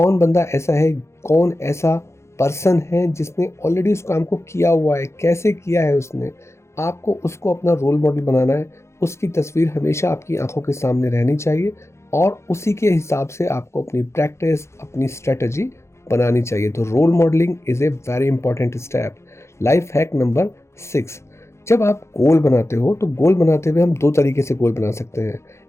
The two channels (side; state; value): right; late; 0.13 ms